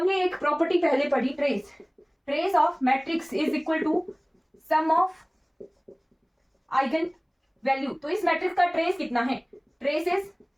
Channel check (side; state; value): both; identical; correlation 1.00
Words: एक प्रॉपर्टी पहले पढ़ी, trace of matrix is equal to sum of eigen value. तो इस मैट्रिक्स का ट्रेस कितना है, trace is